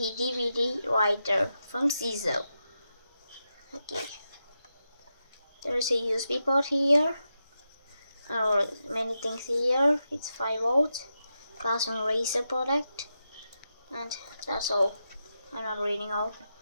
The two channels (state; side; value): inverted; both; correlation -0.88